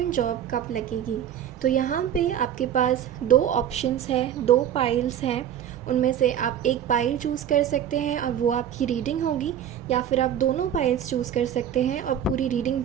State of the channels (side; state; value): left; quieter; 9.9 dB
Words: जॉब कब लगेगी। तो यहाँ पे आपके पास दो ऑप्शंस हैं, दो पाइल्स हैं। उनमें से आप एक पाइल चूज़ कर सकते हैं और वो आपकी रीडिंग होगी, या फिर आप दोनों पाइल्स चूज़ कर सकते हैं और पूरी रीडिंग